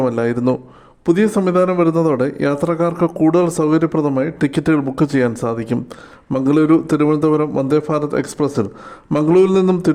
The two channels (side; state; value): both; identical; correlation 1.00